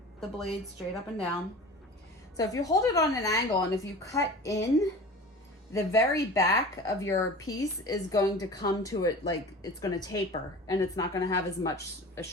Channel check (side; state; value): both; normal; correlation 0.37